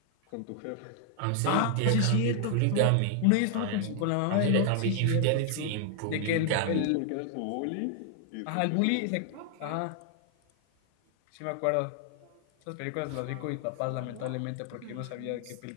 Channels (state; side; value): different; both; correlation 0.00